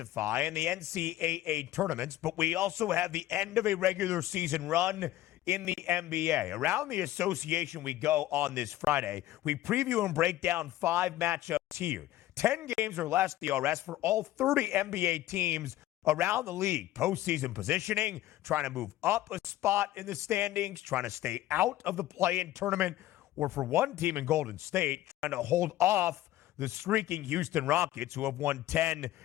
in the NCAA tournaments, but we also have the end of a regular season run in the NBA. Around the association we go on this Friday. We preview and break down 5 matchups here. 10 games or less DRS for all 30 NBA teams around the league. Postseason positioning, trying to move up a spot in the standings, trying to stay out of the play-in tournament, or for one team in Golden State, trying to hold off the streaking Houston Rockets, who have won 10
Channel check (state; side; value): quieter; right; 14.8 dB